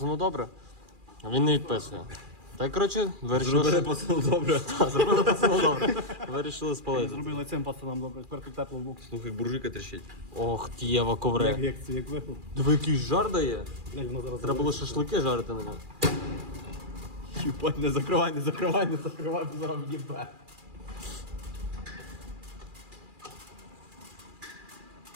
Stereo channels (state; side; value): late; left; 2.4 ms